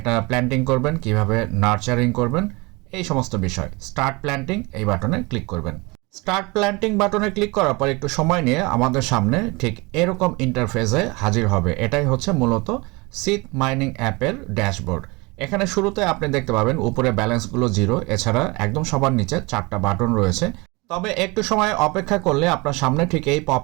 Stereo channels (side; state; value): left; quieter; 25.9 dB